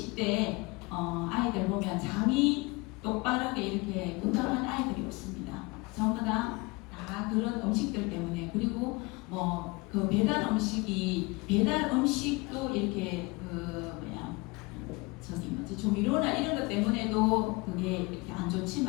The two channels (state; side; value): quieter; right; 25.8 dB